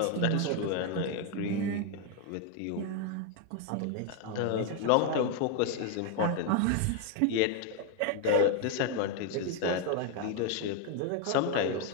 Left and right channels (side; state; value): both; different; correlation 0.01